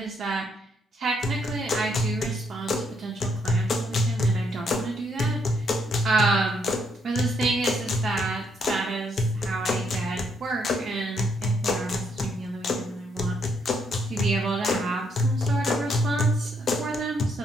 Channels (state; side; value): normal; both; correlation 0.73